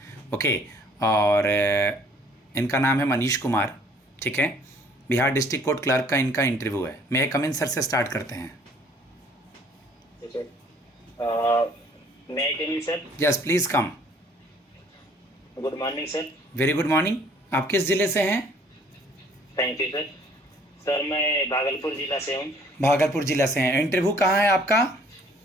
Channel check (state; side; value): normal; both; correlation 0.58